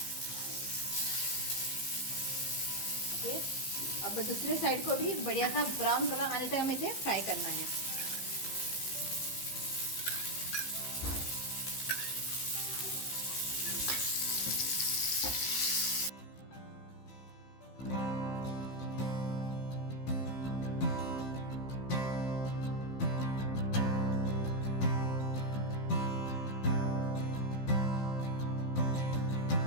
ओके, अब दूसरे साइड को भी बढ़िया सा ब्राउन कलर आने तक हमें इसे फ्राई करना है।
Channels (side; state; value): right; late; 15 ms